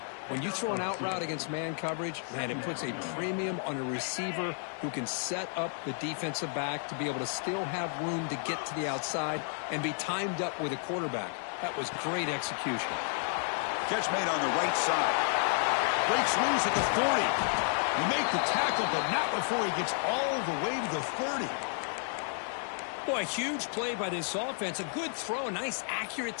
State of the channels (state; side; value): silent; right; 56 dB below the other